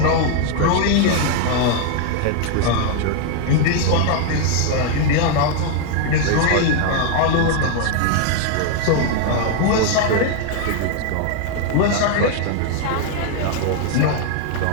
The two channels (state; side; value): different; both; correlation 0.00